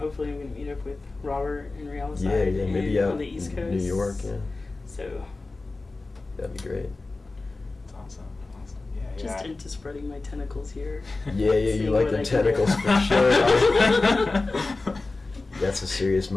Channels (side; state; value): right; quieter; 3.4 dB